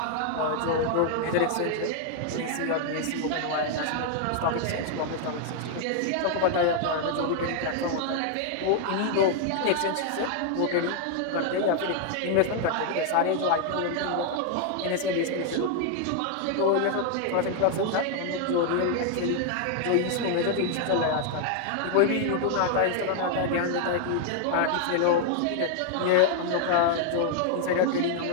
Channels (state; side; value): different; both; correlation 0.00